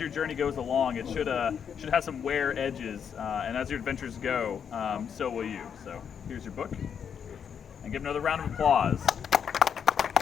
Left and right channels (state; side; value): quieter; right; 7.6 dB